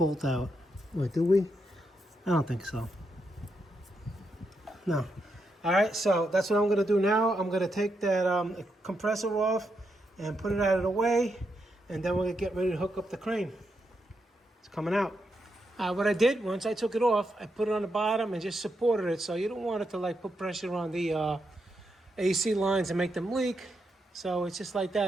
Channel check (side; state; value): both; normal; correlation 0.82